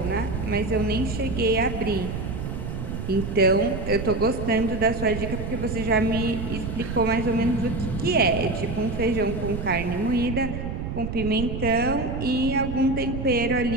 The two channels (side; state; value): right; noise; rumble, 5 dB below the sound